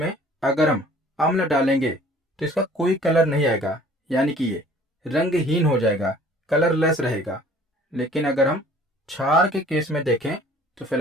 अगर हम अम्ल डालेंगे तो इसका कोई कलर नहीं आएगा, यानी कि ये रंगहीन हो जाएगा, कलरलेस रहेगा। लेकिन अगर हम क्षार के केस में देखें तो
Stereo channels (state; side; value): normal; both; correlation 0.52